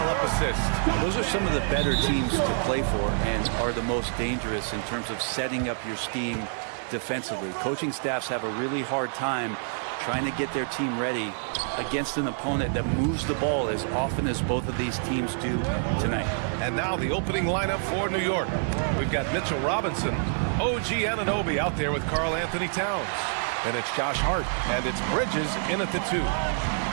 up assists. Those are some of the better teams to play for and are the most dangerous in terms of setting up your scheme defensively. Coaching staffs have a really hard time trying to get their team ready against an opponent that moves the ball as often as both of these teams do tonight. And now the opening lineup for New York. We've got Mitchell Robinson, OG Anunoby out there with Karl Anthony Towns. And it's Josh Hart, and it's Bridges in at the 2.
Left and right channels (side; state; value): left; silent; digital silence